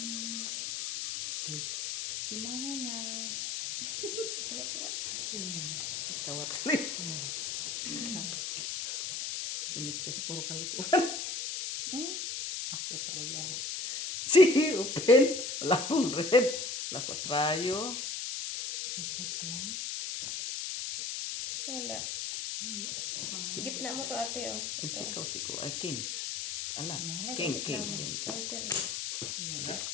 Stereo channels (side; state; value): left; noise; hiss, 3 dB below the sound